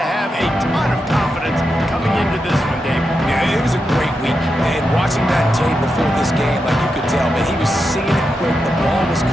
have a ton of confidence coming into this one, David. Yeah, it was a great week, and watching that tape before this game, like you could tell, man, he was seeing it quick. The ball was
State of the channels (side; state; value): both; normal; correlation 0.87